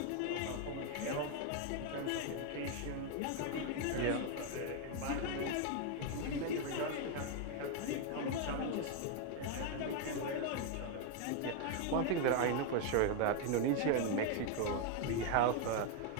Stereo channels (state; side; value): different; both; correlation 0.01